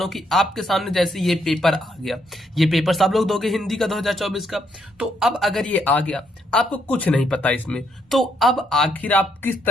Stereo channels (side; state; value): both; normal; correlation 0.74